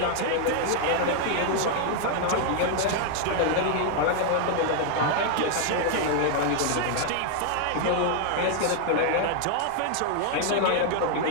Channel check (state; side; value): different; both; correlation 0.00